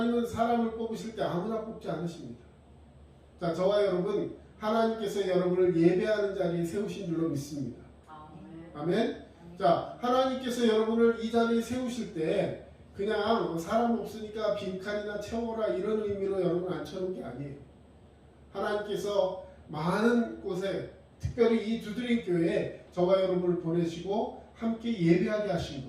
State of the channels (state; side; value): identical; both; correlation 1.00